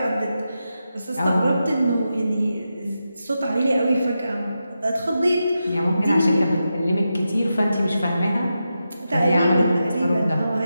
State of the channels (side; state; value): both; inverted; correlation -0.89